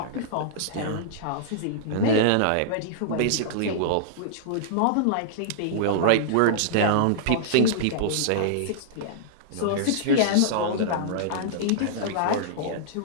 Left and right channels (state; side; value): different; both; correlation -0.02